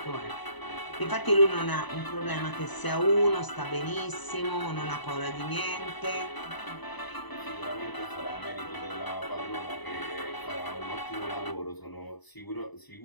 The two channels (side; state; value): right; late; 1.0 ms